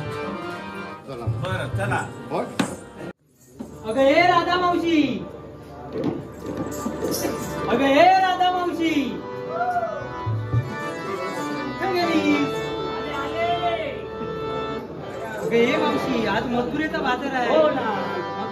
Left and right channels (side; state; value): both; identical; correlation 1.00